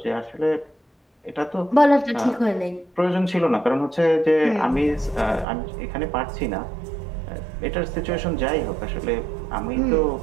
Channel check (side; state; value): left; drops out; at 5.5 s